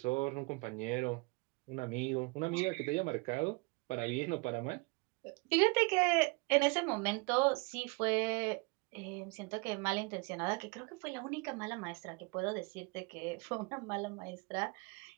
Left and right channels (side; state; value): left; quieter; 29.2 dB